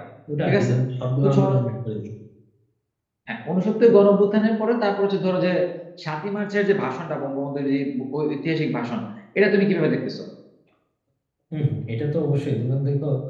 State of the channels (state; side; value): identical; both; correlation 1.00